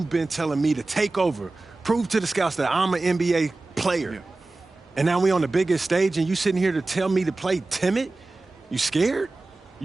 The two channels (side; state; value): left; quieter; 3.2 dB